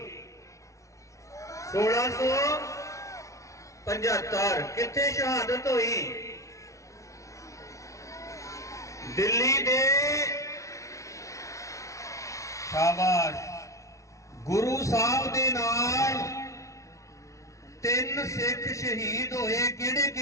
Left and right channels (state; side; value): late; right; 0.15 ms